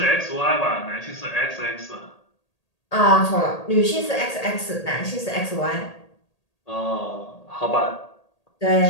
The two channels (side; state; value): right; late; 1.8 ms